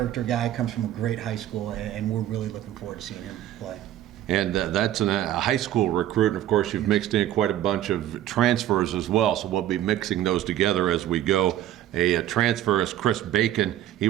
guy, comes from a great high school, and we're really looking forward to seeing him play. And that's a high school recruit, and of course you've mixed in quite a bunch of transfers as well, so we'll be mixing those together as we go. A transfer is Chris Bacon. He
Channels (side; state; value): left; quieter; 12.5 dB